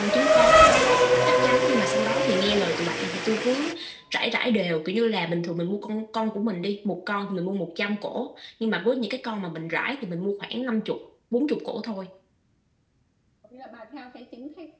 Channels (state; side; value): identical; both; correlation 1.00